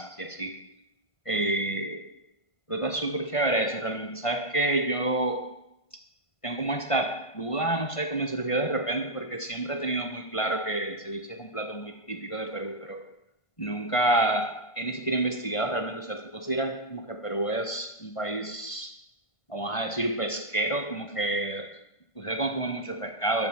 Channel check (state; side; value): late; right; 1.5 ms